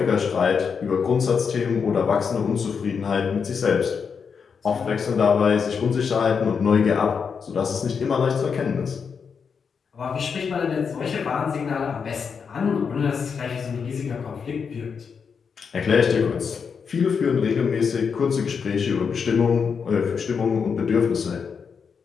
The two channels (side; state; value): right; quieter; 6.1 dB